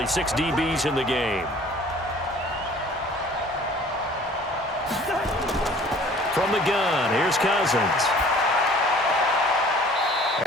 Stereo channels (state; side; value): normal; both; correlation 0.51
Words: 6 DBs in the game. From the gun, here's Cousins.